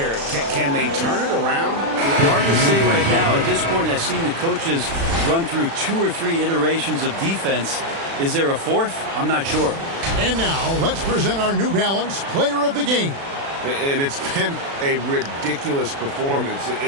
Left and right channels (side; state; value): left; late; 36 ms